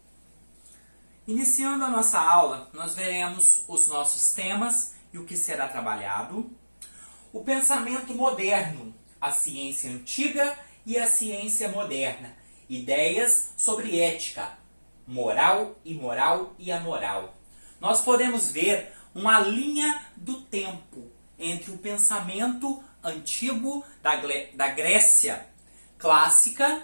Iniciando a nossa aula, nós veremos os nossos temas e o que será trabalhado. O pensamento moderno, a ciência antiga e a ciência moderna. Ideias sobre ética, moral, imoral e amoral. Nós podemos ver uma linha do tempo entre o pensamento antigo da Grécia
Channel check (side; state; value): both; inverted; correlation -1.00